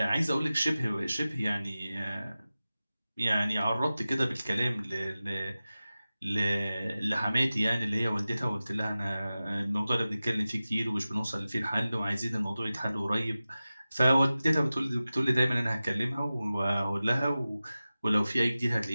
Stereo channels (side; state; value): both; inverted; correlation -0.96